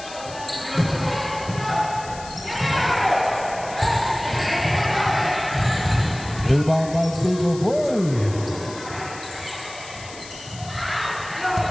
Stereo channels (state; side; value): noise; left; hiss, 16 dB below the sound